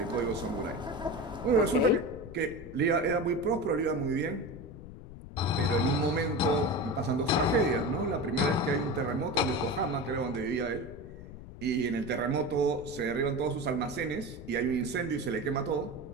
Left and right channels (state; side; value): noise; left; rumble, 14 dB below the sound